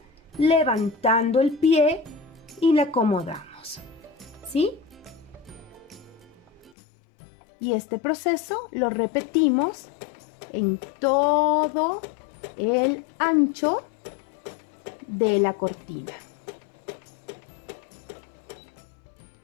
levantando el pie y la acomodamos, ¿sí? Y este proceso lo repetimos en todo el ancho de la cortina.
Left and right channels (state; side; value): drops out; right; at 6.8 s